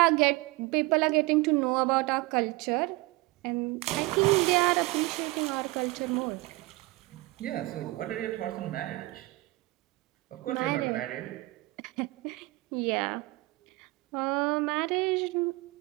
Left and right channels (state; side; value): quieter; left; 21.7 dB